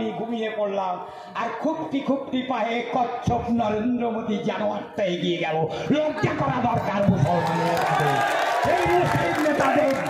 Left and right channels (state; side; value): identical; both; correlation 1.00